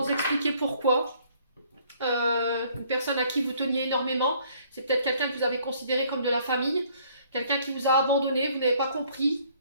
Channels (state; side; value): inverted; both; correlation -0.61